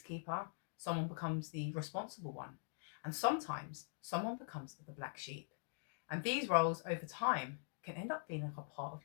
someone becomes the responsible one, and sometimes someone becomes the black sheep. And these roles over time can end up feeling like a part of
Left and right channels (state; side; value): silent; right; digital silence